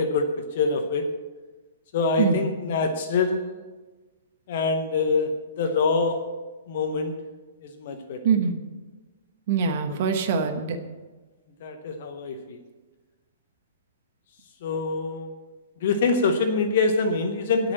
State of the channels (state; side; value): inverted; both; correlation -0.45